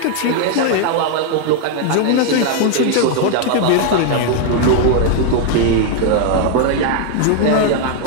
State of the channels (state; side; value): different; both; correlation 0.00